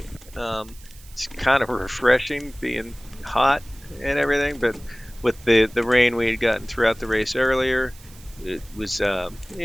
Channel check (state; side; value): noise; right; hiss, 23 dB below the sound